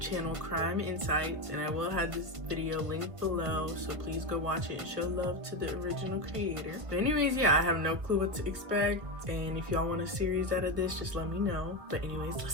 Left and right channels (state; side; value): late; left; 1.4 ms